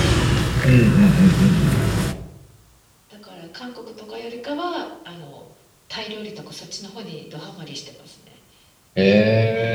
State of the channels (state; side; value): identical; both; correlation 1.00